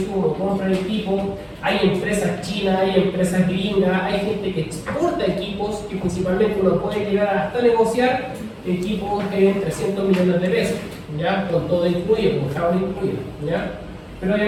compra de equipo. Hay empresas chinas, hay empresas gringas, hay gente que exporta equipos que principalmente uno puede llegar hasta negociar equipos de 300 millones de pesos, ¿ya? Con todo incluido, con Java incluido, ¿ya? Pero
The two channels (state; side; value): identical; both; correlation 1.00